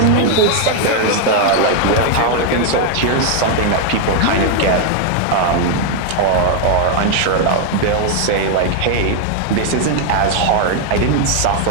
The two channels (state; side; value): different; both; correlation 0.00